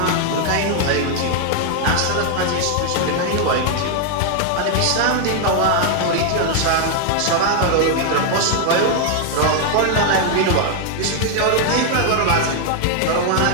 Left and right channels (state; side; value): different; both; correlation 0.00